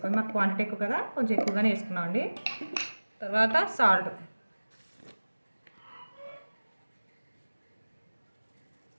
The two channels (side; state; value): both; inverted; correlation -1.00